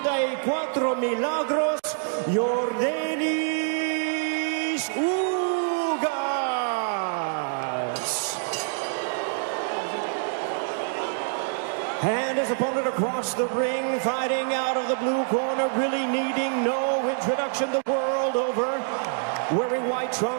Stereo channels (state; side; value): silent; left; digital silence